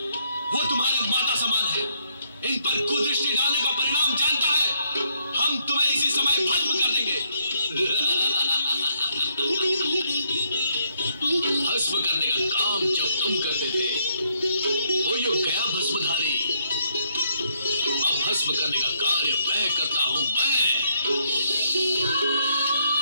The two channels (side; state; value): both; inverted; correlation -0.73